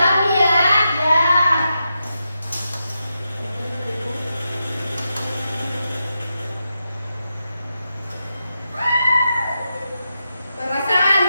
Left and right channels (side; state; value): both; inverted; correlation -0.87